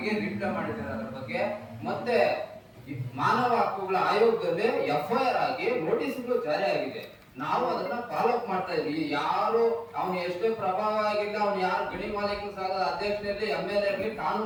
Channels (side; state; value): both; identical; correlation 1.00